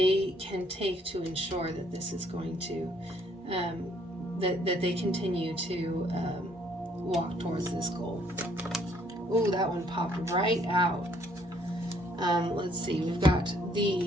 can take to ensure that this is going to, that they continue to walk towards this goal. Ooh, that one popped right out. Let's see, we've got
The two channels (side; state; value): both; normal; correlation 0.65